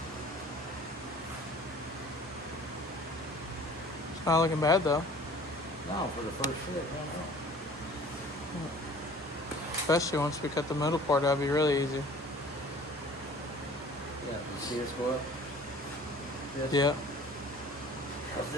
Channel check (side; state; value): both; normal; correlation 0.48